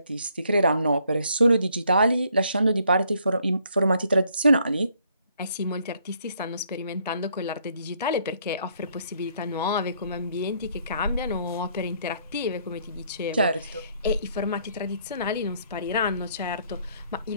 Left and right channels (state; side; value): inverted; both; correlation -0.67